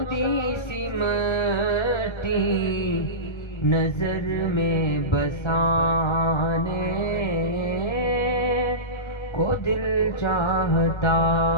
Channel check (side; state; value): right; late; 1.3 ms